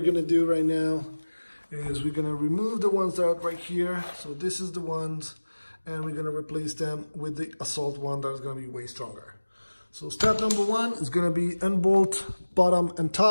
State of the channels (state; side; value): inverted; both; correlation -1.00